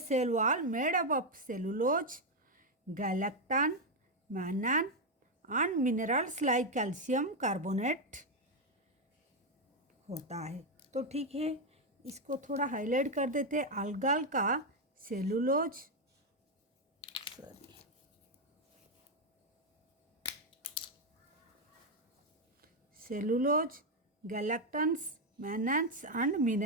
cell wall made up of cellulose, galactan, mannan and minerals like calcium carbonate होता है। तो ठीक है, इसको थोड़ा हाईलाइट कर देते हैं। algal का cellulose, cellulose, galactans, mannans and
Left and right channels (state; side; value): normal; both; correlation 0.03